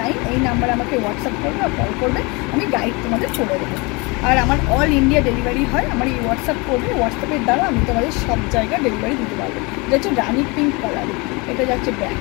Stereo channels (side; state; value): right; quieter; 27.4 dB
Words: এই নাম্বারে আমাকে হোয়াটসঅ্যাপ করবে আর কল করবে, আমি গাইড তোমাদের করে দেবো। আর আমার অল ইন্ডিয়া ডেলিভারি হয়, আমার এই হোয়াটসঅ্যাপ করবে, হোয়াটসঅ্যাপের দ্বারা আমি তোমাদের সব জায়গায় ডেলিভারি দিতে পারবো। এটা হচ্ছে রানি পিঙ্ক কালার, এটা যাচ্ছে